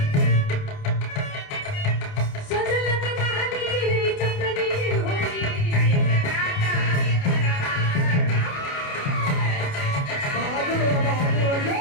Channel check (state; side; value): late; right; 29 ms